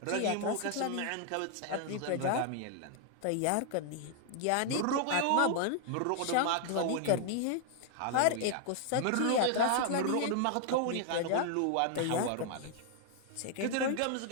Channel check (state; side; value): different; both; correlation 0.00